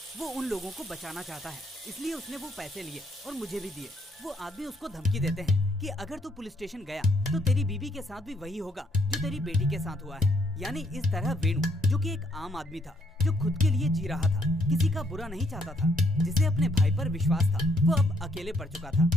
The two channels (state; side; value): normal; both; correlation 0.71